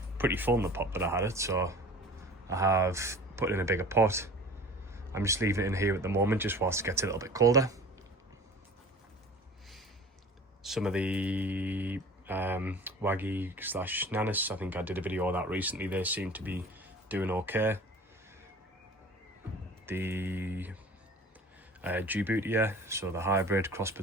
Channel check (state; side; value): normal; both; correlation 0.42